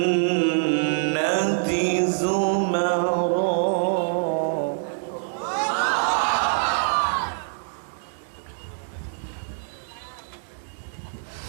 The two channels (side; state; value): left; silent; digital silence